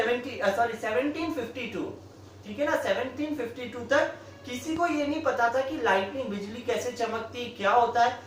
ठीक है ना, 1752 तक किसी को ये नहीं पता था कि लाइटनिंग, बिजली कैसे चमकती है, क्या होता है.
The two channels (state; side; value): identical; both; correlation 1.00